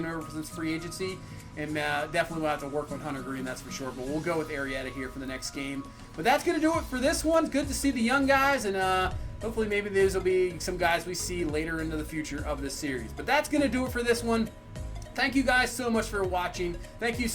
him over since free agency. And definitely we'll have to work on Hunter Green, that's for sure. But we'll go with Arrieta here for the next game. But that's going to do it for this one. Good to see the young guys. And hopefully maybe these will be some guys we see later into the future of this series. But that's going to do it for this one. Thank you guys so much for watching. Thank you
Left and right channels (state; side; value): identical; both; correlation 1.00